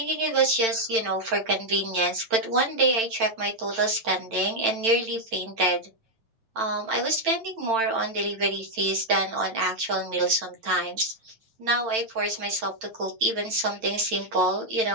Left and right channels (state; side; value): late; left; 8.9 ms